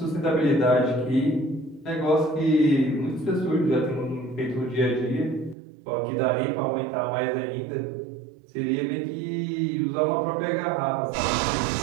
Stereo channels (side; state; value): left; drops out; at 5.6 s